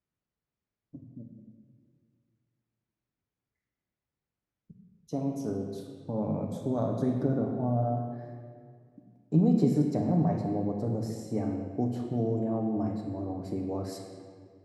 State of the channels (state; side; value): identical; both; correlation 1.00